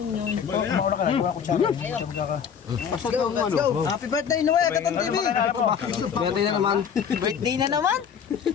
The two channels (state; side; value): quieter; right; 7.5 dB